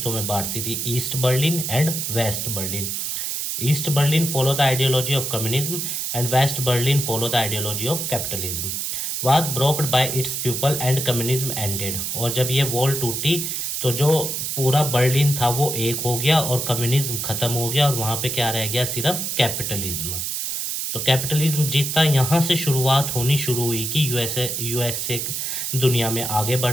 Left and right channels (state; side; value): noise; right; hiss, 2 dB below the sound